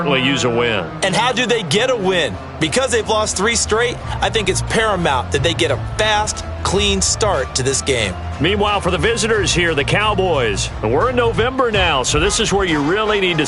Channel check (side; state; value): both; identical; correlation 1.00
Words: use a win. And how do they get a win? Because they've lost 3 straight, I think it's paramount that they get a fast, clean start to this game. Meanwhile, for the visitors here, the Cowboys. And we're in November now, so this is where you really need to